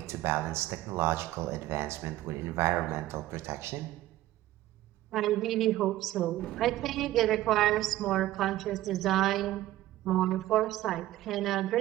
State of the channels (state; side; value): quieter; left; 15.2 dB